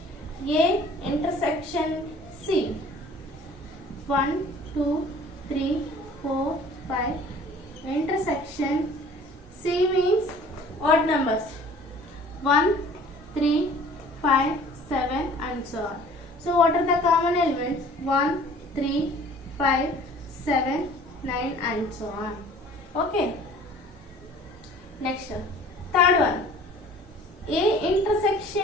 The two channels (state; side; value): normal; both; correlation 0.50